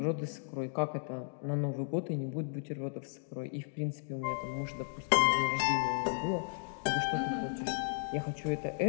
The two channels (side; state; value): right; silent; digital silence